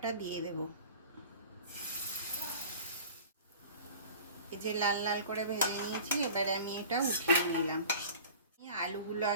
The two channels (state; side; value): inverted; both; correlation -0.41